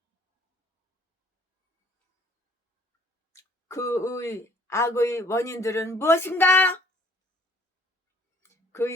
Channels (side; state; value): both; normal; correlation 0.59